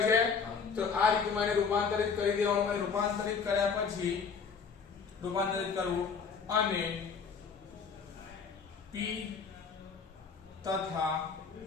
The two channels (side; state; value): right; quieter; 5.7 dB